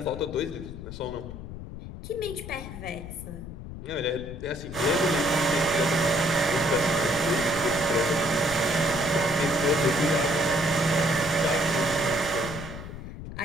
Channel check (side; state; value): left; noise; rumble, 11 dB below the sound